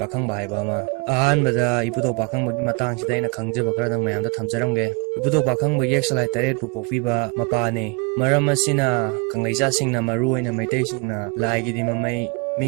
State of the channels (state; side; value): quieter; left; 30.3 dB